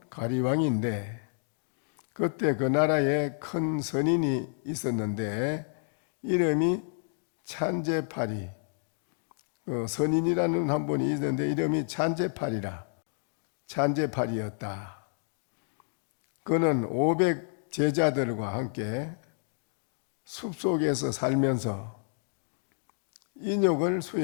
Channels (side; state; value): right; silent; digital silence